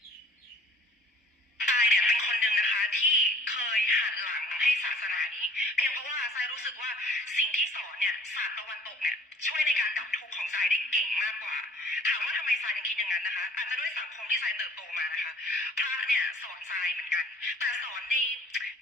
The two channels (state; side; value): normal; both; correlation 0.53